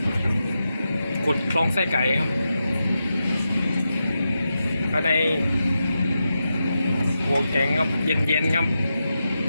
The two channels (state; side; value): inverted; both; correlation -0.88